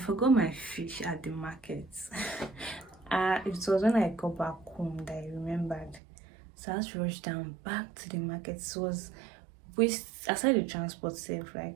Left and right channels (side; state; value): left; drops out; at 6.0 s